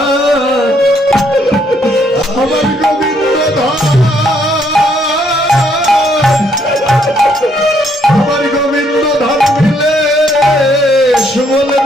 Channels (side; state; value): both; normal; correlation 0.70